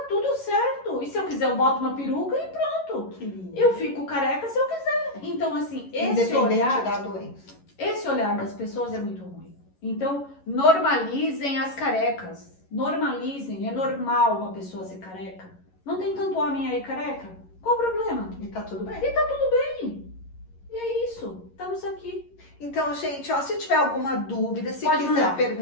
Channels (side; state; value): right; late; 11 ms